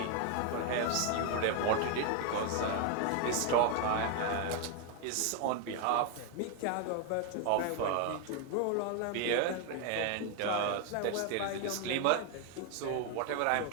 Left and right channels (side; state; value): both; different; correlation 0.01